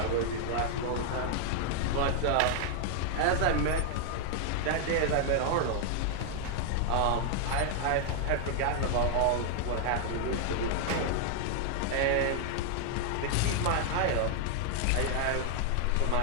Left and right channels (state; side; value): different; both; correlation 0.00